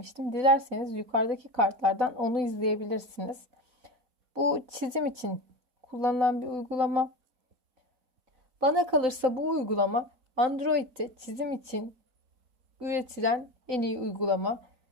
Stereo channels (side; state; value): left; late; 3.9 ms